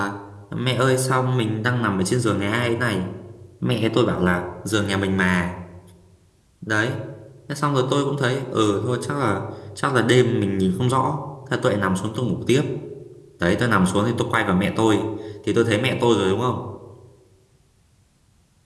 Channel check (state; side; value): identical; both; correlation 1.00